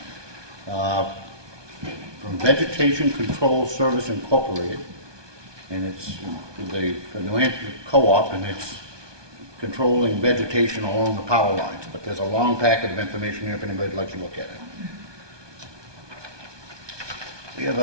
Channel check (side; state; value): left; late; 1.2 ms